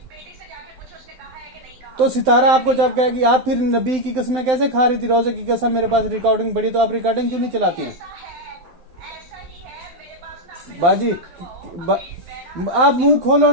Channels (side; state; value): left; late; 12 ms